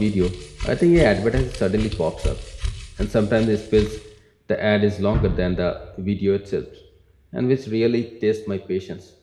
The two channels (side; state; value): both; identical; correlation 1.00